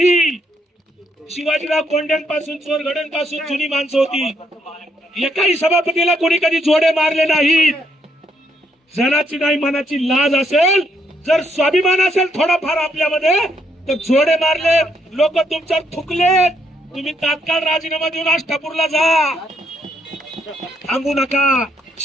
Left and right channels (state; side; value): normal; both; correlation 0.73